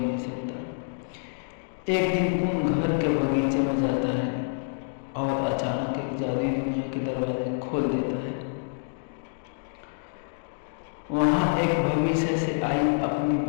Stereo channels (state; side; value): silent; right; digital silence